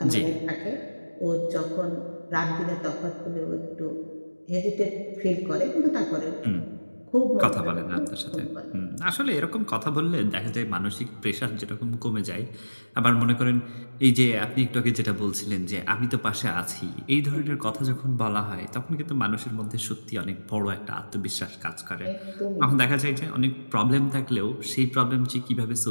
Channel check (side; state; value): both; inverted; correlation -1.00